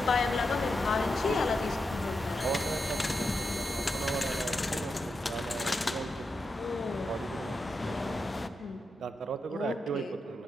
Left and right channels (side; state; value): both; normal; correlation 0.87